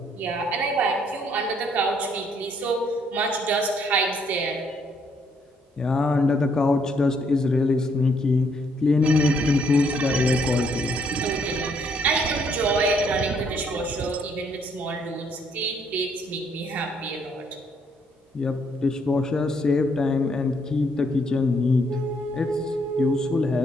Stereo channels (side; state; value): both; normal; correlation 0.69